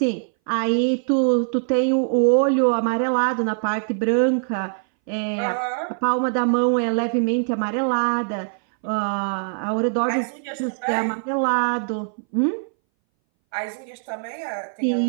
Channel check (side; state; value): left; silent; 61 dB below the other